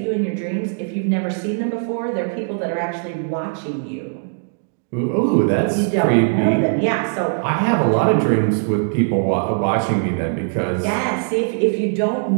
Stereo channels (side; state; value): left; silent; digital silence